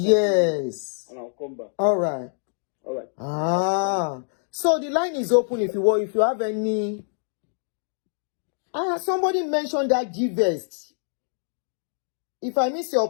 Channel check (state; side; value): silent; right; digital silence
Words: And I'll come back. All right. So the line is open if you have any. Somebody mentioned that GVEX. If I miss your